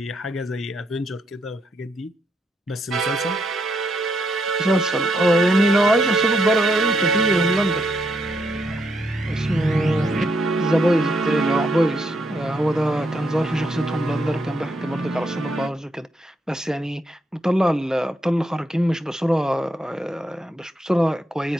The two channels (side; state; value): both; normal; correlation 0.78